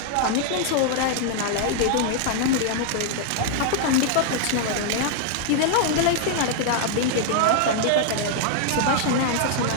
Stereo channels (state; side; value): different; both; correlation 0.00